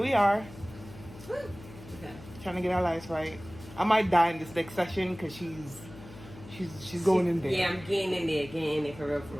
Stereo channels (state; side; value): noise; left; hum, 17 dB below the sound